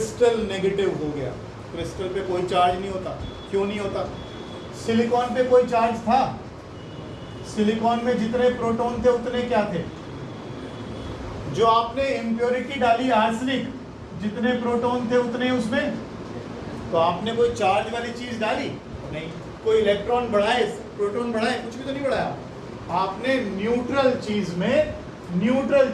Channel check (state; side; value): identical; both; correlation 1.00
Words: नेगेटिव हो गया। क्रिस्टल पे कोई चार्ज नहीं होता। क्यों नहीं होता? सिलिकॉन पे कोई चार्ज था। सिलिकॉन में जितने प्रोटॉन थे उतने क्या थे? जो आपने इम्प्योरिटी डाली आर्सेनिक, जितने प्रोटॉन थे उतने उसमें, तो आपने कोई चार्ज वाली चीज डाली नहीं। कोई इलेक्ट्रॉन बढ़ाए, प्रोटॉन बढ़ाए, कुछ भी तो नहीं बढ़ाया। आपने न्यूट्रल चीज में न्यूट्रल